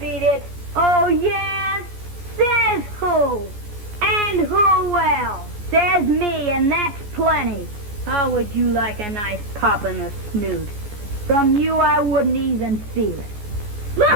it. Oh, yeah? Says who? And who else? Says me, and that's plenty. How would you like a nice pop in the snoot? From you, I wouldn't even feel it.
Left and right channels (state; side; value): late; left; 14 ms